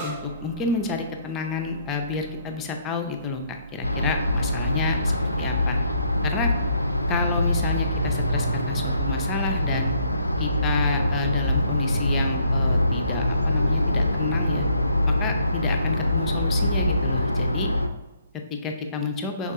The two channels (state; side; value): inverted; both; correlation -0.68